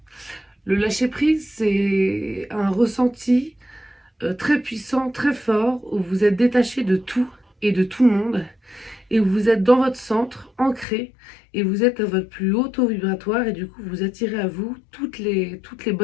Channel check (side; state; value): right; drops out; at 10.9 s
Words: Le lâcher prise, c'est un ressenti très puissant, très fort, où vous êtes détaché de tout et de tout le monde, et où vous êtes dans votre centre, ancré, et vous êtes à votre plus haut taux vibratoire, et du coup vous attirez à vous toutes les